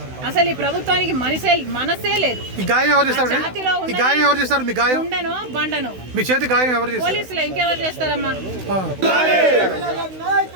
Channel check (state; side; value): late; left; 16 ms